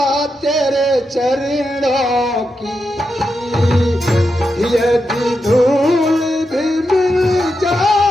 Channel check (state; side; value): normal; both; correlation 0.87